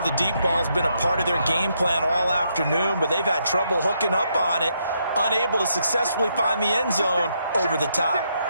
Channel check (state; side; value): inverted; both; correlation -0.77